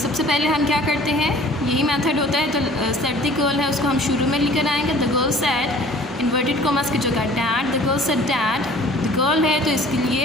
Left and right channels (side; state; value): both; normal; correlation 0.50